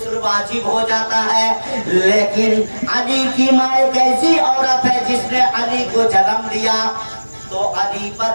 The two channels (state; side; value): inverted; both; correlation -1.00